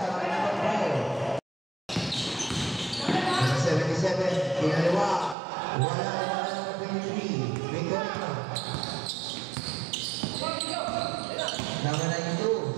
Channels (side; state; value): left; drops out; at 5.4 s